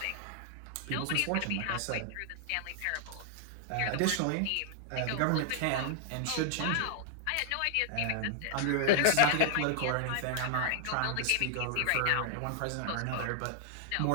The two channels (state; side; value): different; both; correlation 0.00